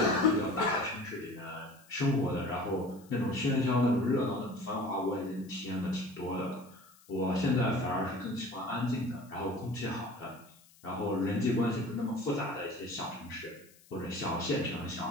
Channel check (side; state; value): left; noise; hiss, 27 dB below the sound